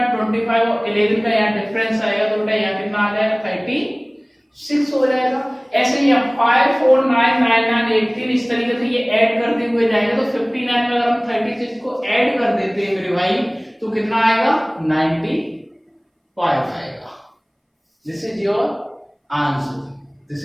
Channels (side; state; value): both; identical; correlation 1.00